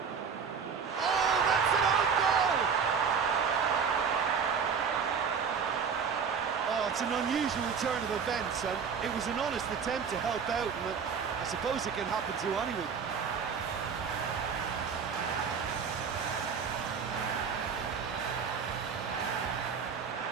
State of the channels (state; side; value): quieter; left; 6.3 dB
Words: Oh, that's an own goal! Oh, it's an unusual turn of events, and it was an honest attempt to help out, and I suppose it can happen to anyone.